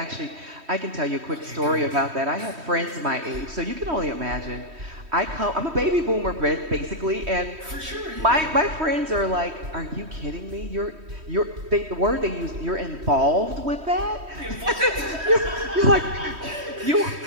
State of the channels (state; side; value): late; left; 3.1 ms